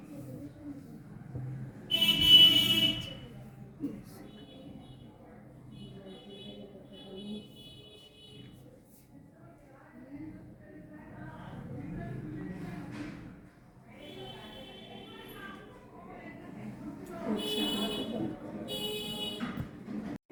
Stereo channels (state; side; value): identical; both; correlation 1.00